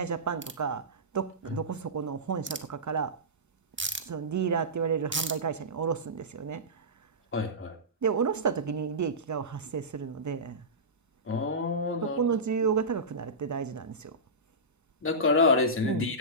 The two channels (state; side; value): normal; both; correlation -0.18